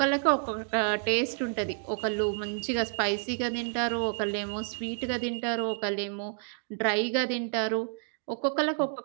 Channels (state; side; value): silent; left; 58 dB below the other